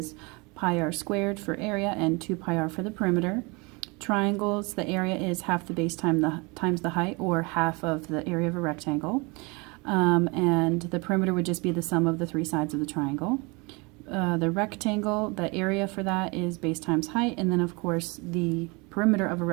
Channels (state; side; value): quieter; left; 28.2 dB